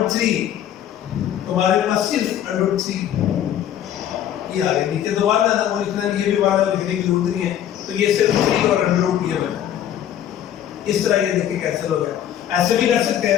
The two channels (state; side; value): quieter; right; 10.7 dB